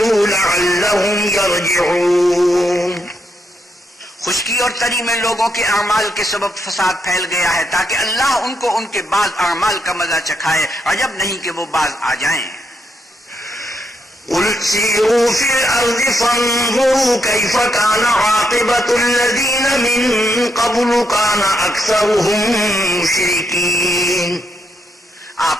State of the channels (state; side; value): normal; both; correlation 0.79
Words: لعلہم یرجعون۔ خشکی اور تری میں لوگوں کے اعمال کے سبب فساد پھیل گیا ہے تاکہ اللہ ان کو ان کے بعض اعمال کا مزہ چکھائے، عجب نہیں کہ وہ باز آ جائیں۔ قل سیروا فی الارض فانظروا کیف کان عاقبۃ الذین من قبل کان اکثرهم مشرکین۔ آپ